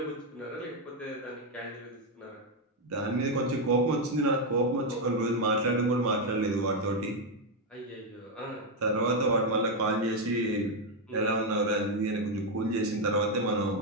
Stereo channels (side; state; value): both; normal; correlation 0.03